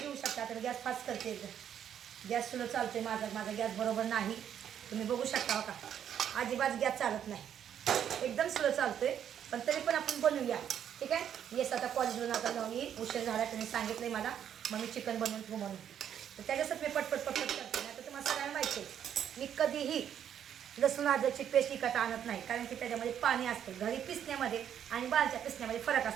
घेऊ शकता. तर गॅस फास्ट करते एकदम. गॅस स्लो चालते माझा गॅस बरोबर नाही. तुम्ही बघू शकता का अजिबात गॅस चालत नाही, एकदम स्लो चालतोय. पण तरी पण आपण बनवूया. ठीक आहे. येस आता कॉलेजवरून आता जाऊन येईल, उशीर झाला. तुम्ही सांगितलं मला मग मी चिकन बनवून ठेवू म्हणून. तर त्याच्यासाठी मी पटपट करते. नाही तर तुम्हाला सगळ्यांना माहिती आहे मी कधीही लसूण अद्रकची पेस्ट विकत आणत नाही, कारण की त्याच्यामध्ये पाणी असतं. घरी पिसण्यामध्ये आणि बाहेरच्या पिसण्यामध्ये फरक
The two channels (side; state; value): left; quieter; 9.3 dB